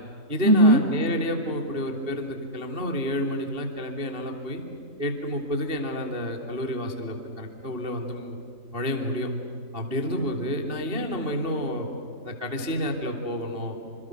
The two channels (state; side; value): late; left; 2.8 ms